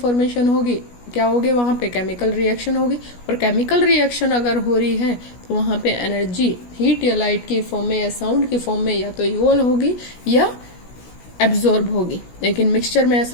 होगी क्या होगी, वहां पे केमिकल रिएक्शन होगी, और केमिकल रिएक्शन अगर हो रही है तो वहां पे एनर्जी हीट या लाइट की फॉर्म में या साउंड की फॉर्म में या तो इवॉल्व होगी या एब्जॉर्ब होगी। लेकिन मिक्सचर में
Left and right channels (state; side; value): late; right; 17 ms